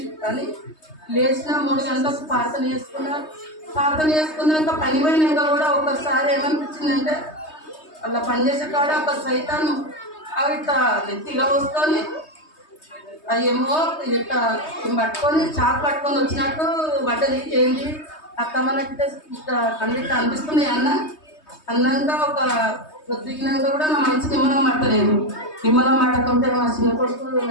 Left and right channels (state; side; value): late; right; 3.2 ms